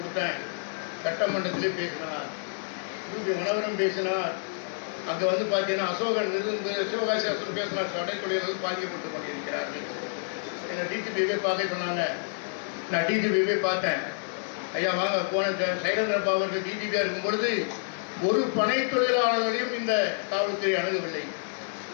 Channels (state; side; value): silent; right; digital silence